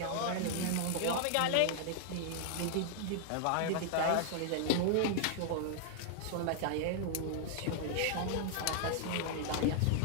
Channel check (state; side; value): different; both; correlation 0.00